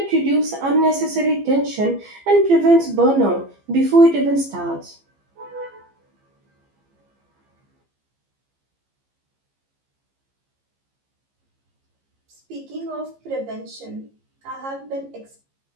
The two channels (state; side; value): late; left; 15 ms